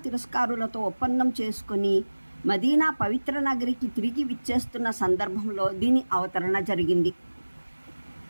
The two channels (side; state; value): both; inverted; correlation -1.00